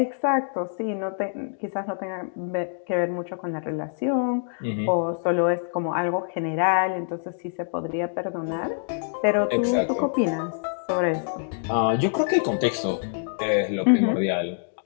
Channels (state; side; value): silent; right; digital silence